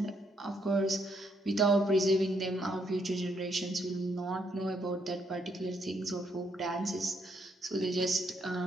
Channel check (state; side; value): normal; both; correlation 0.74